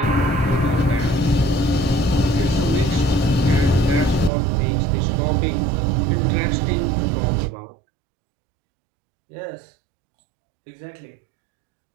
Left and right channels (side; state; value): left; drops out; at 4.3 s